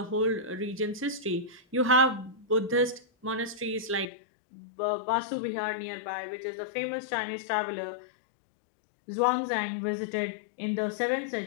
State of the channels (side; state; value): right; drops out; at 4.1 s